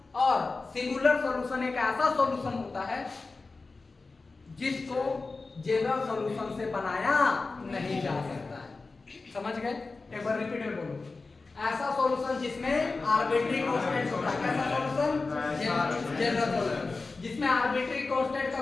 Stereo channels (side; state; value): right; quieter; 3.8 dB